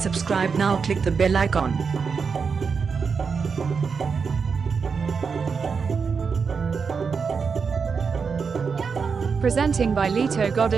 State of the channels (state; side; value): quieter; left; 5.5 dB